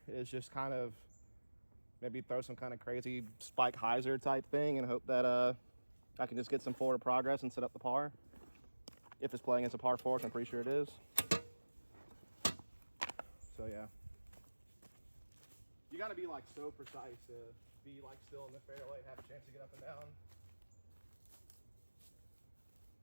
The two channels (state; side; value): inverted; both; correlation -1.00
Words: is just kind of maybe throw some kind of crazy spike hyzer type thing and hope that I can just get some forward progress and set up the par. If it's playing as a par 4, which I'm pretty sure it is. So yeah. You gotta be like so precise to be like still in the fairway, have a chance to get up and down.